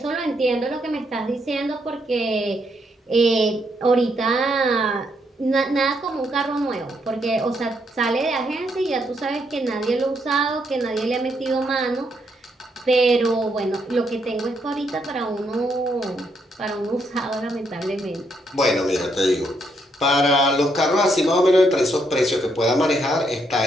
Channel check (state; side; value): normal; both; correlation 0.76